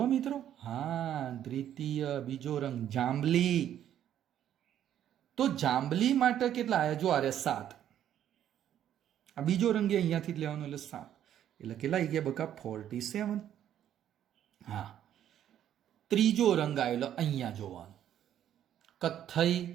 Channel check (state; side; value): quieter; left; 10.7 dB